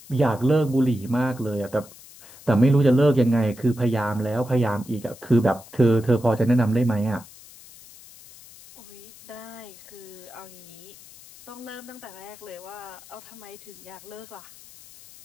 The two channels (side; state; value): left; noise; hiss, 20 dB below the sound